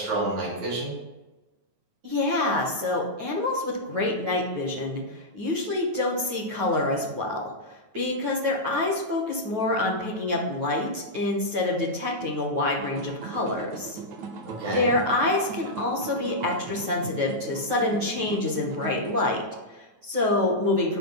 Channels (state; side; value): late; left; 9.3 ms